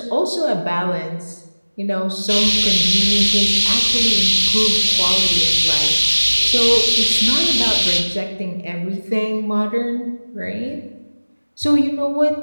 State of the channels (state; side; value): inverted; both; correlation -1.00